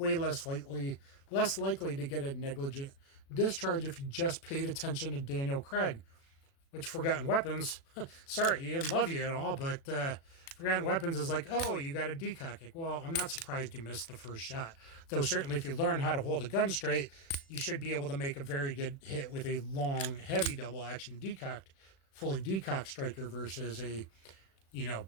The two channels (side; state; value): right; late; 36 ms